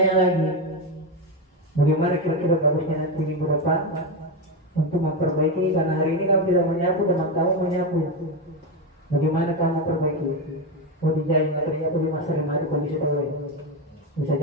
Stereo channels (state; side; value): normal; both; correlation 0.12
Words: lagi, bagaimana kira-kira bagusnya nanti minggu depan untuk memperbaiki, karena hari ini kamu tidak menyapu, teman kamu menyapu. Bagaimana kamu memperbaiki? Oh, dijahit ternyata di masa remati kondisi terbaik. Bisa